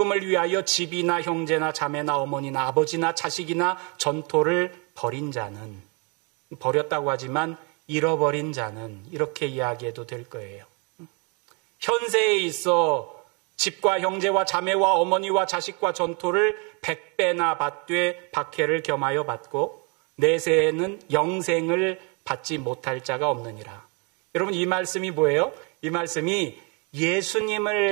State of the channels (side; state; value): left; quieter; 33.4 dB